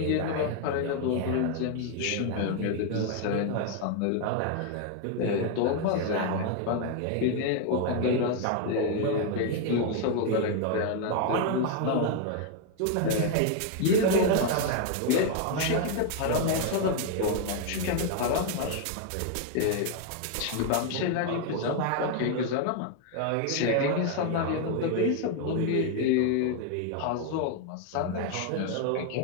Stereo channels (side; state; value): both; different; correlation 0.00